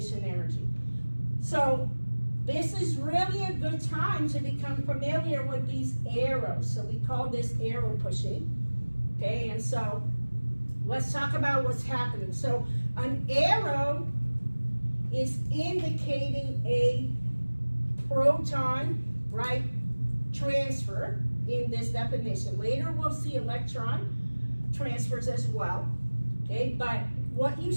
energy. So this is really a good time to become familiar with these arrows. So we call this arrow pushing. Okay, and so let's talk about what's happening. So an arrow is indicating a proton, right, transfer in this definition. Later we'll see electron transfers as well. Okay, but what you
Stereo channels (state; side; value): inverted; both; correlation -1.00